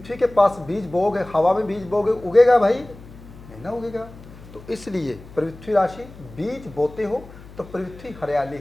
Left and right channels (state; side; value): noise; left; hum, 19 dB below the sound